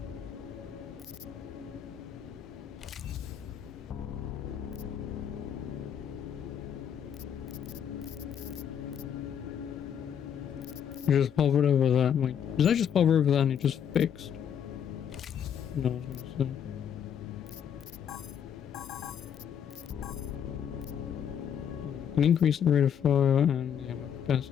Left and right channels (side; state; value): right; quieter; 8.6 dB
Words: I just hovered over that. Wait, did I just hover over that and it just fixed? No, I was gonna say. Can increase the rate of fire and the ammo